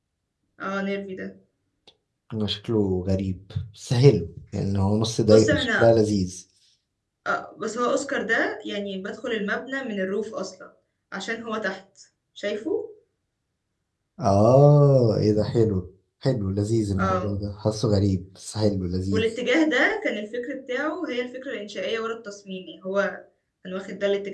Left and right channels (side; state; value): both; identical; correlation 1.00